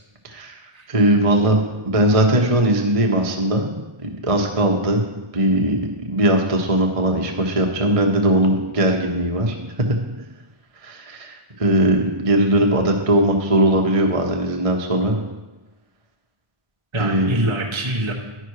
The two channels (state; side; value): late; left; 1.3 ms